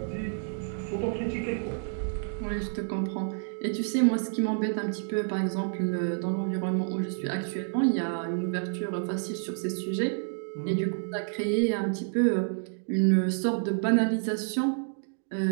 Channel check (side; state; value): left; silent; digital silence